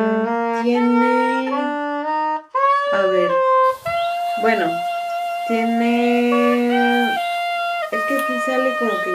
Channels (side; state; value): both; identical; correlation 1.00